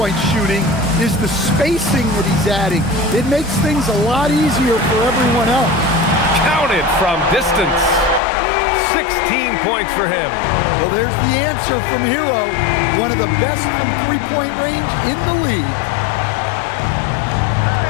shooting is the spacing that he's adding. It makes things a lot easier for everyone else. Counted from distance. 16 points for him. Well, there's the answer from Hero, one of the best from three-point range in the league.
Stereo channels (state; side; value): drops out; right; at 8.2 s